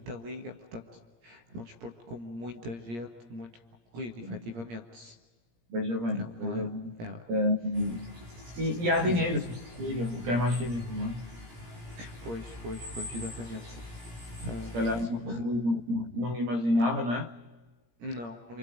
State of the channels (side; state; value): left; late; 17 ms